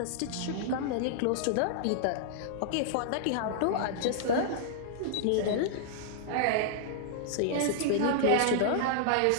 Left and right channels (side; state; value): both; different; correlation -0.01